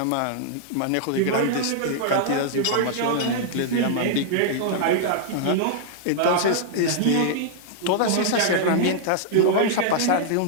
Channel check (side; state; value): both; different; correlation -0.01